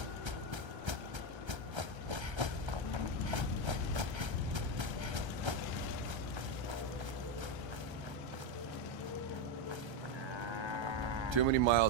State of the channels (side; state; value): left; late; 1.3 ms